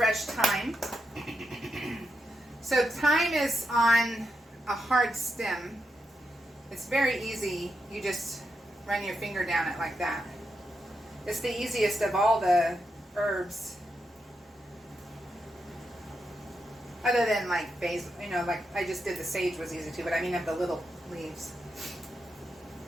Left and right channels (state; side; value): normal; both; correlation 0.85